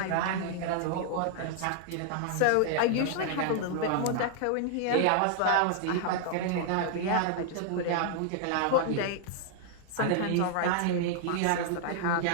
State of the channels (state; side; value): different; both; correlation -0.01